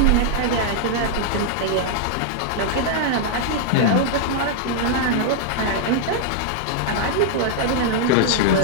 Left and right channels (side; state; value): both; different; correlation 0.00